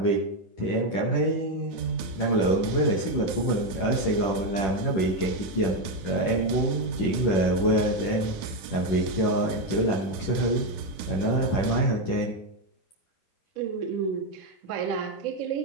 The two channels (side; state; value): right; late; 10 ms